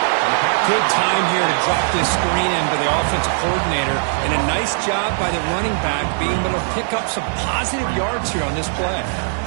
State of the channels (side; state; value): left; silent; 57 dB below the other